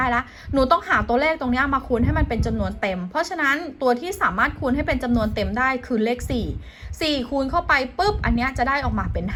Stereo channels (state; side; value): identical; both; correlation 1.00